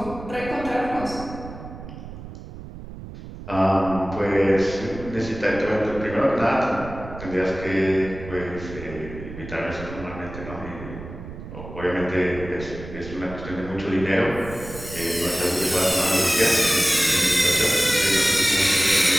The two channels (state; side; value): noise; right; rumble, 12 dB below the sound